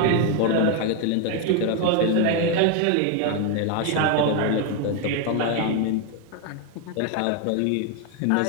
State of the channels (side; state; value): both; different; correlation 0.01